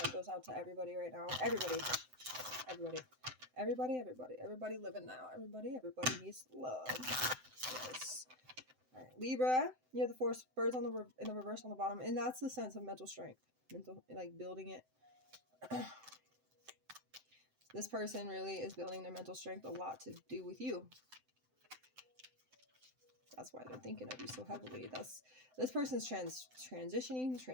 goes out to everybody right now. Everybody living now. Everybody needs love. Yes. All right, Libra, you have the 4 birds on in the reverse on the bottom, and that's the sense of mental strength, like building it. This person really is building their mental strength, a lot to do with you. That's why they're thinking of you so heavily. This person's transitioning,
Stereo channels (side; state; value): left; late; 7.8 ms